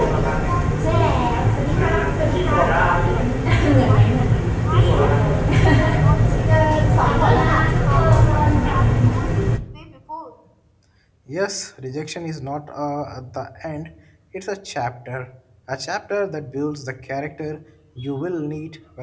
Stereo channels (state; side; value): identical; both; correlation 1.00